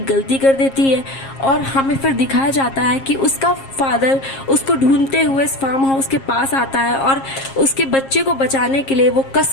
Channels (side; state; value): right; late; 7.4 ms